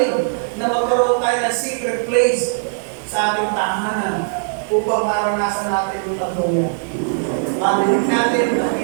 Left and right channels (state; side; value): silent; left; 58 dB below the other